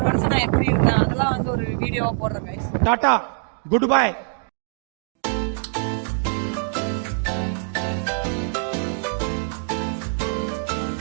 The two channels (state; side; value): silent; left; 63 dB below the other